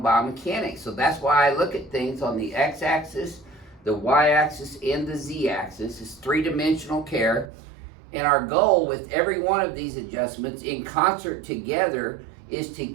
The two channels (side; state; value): left; drops out; at 7.5 s